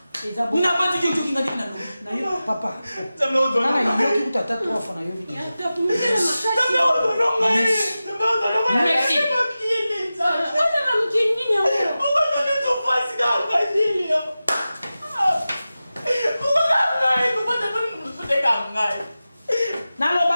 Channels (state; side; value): inverted; both; correlation -0.95